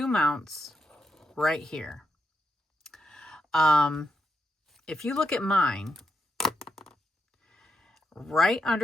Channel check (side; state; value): both; normal; correlation 0.81